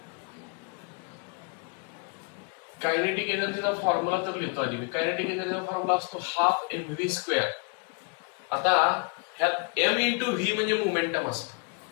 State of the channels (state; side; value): quieter; right; 34.8 dB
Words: कायनेटिक एनर्जीचा फॉर्म्युला तर लिहितो आधी मी. कायनेटिक एनर्जीचा फॉर्म्युला असतो हाफ mv². आता ह्यात एम इंटू व्ही म्हणजे मोमेंटम असतं,